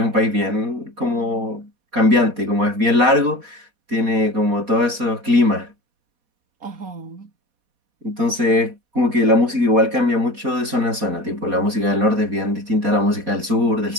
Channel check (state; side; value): late; left; 4.2 ms